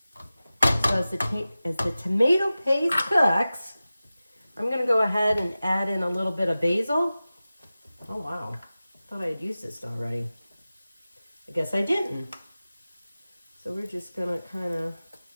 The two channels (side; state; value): both; inverted; correlation -0.96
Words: So as the tomato paste cooks, I'm going to go ahead and add in a little bit of basil. Oh wow, thought I had used this already. I guess I didn't. So we're just going to kind of